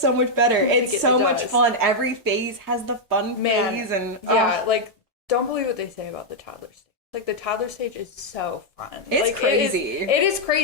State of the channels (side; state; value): both; normal; correlation -0.02